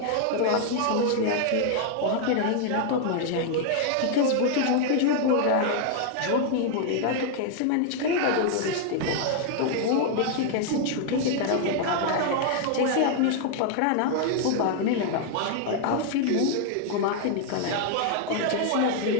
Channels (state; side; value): different; both; correlation 0.00